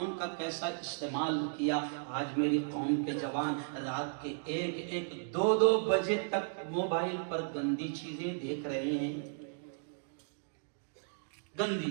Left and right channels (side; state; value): left; silent; digital silence